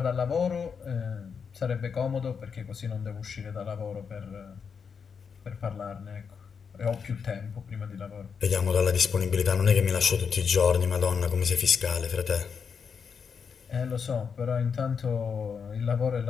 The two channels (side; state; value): right; quieter; 6.2 dB